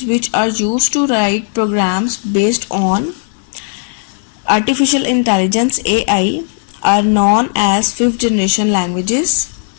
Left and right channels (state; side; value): silent; right; digital silence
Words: which are used to write programs based on artificial intelligence (AI) are known as 5th generation languages.